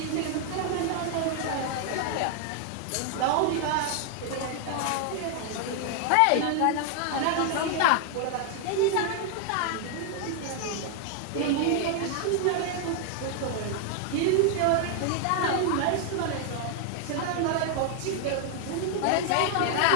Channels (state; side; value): different; both; correlation 0.00